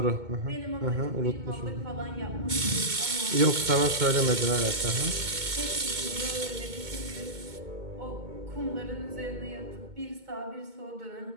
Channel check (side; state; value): left; late; 2.2 ms